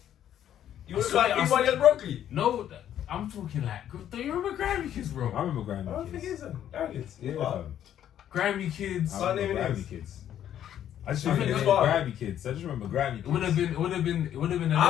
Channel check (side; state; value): right; quieter; 10.6 dB